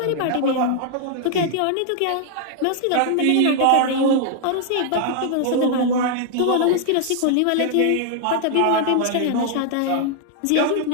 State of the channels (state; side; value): different; both; correlation 0.00